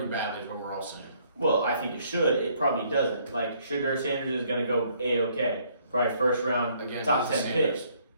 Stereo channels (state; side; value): inverted; both; correlation -0.65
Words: is what we're all saying. Well, I think it should. It probably doesn't. Like, Shedeur Sanders is going to go A-OK. Probably first round, Again, top he's 10 Sanders. pick.